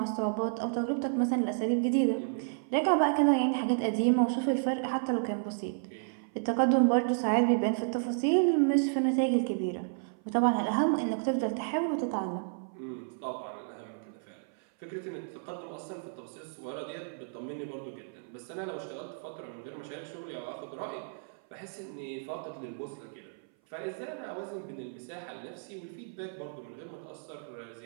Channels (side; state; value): left; silent; 55 dB below the other